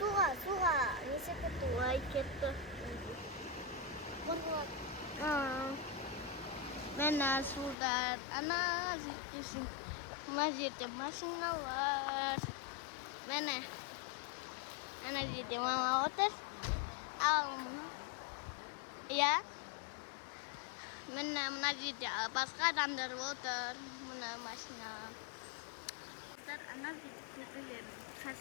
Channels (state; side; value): drops out; right; at 7.8 s